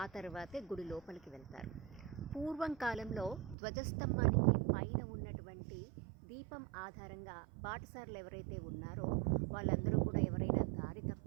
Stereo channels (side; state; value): left; drops out; at 3.6 s